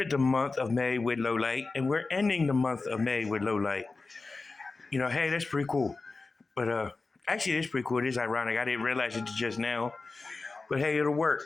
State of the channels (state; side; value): quieter; right; 3.8 dB